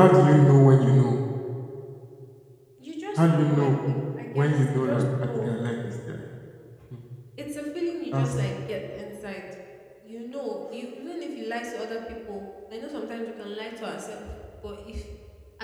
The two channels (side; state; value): both; identical; correlation 1.00